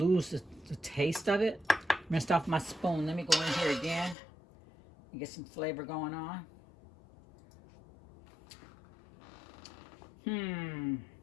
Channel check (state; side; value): drops out; right; at 4.2 s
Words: lose the taste of it. I'm going to start with my spoon. Let me go in here again and get some flavor going on.